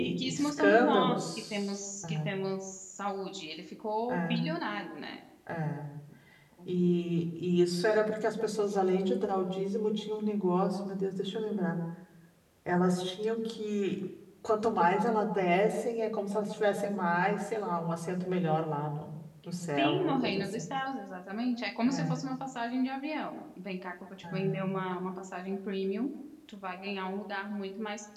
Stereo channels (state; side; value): identical; both; correlation 1.00